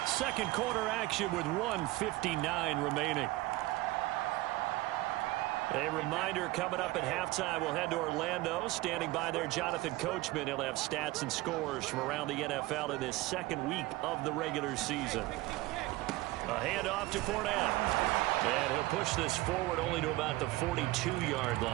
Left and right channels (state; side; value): quieter; left; 19.0 dB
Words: Second quarter action with 1:59 remaining. A reminder coming up at halftime, we'll head to Orlando. Standing by there, Jonathan Coachman. He'll have stats and scores from around the NFL in this 2nd week of the regular season. A handoff to Fournette. And he'll push this forward only to about the 42-yard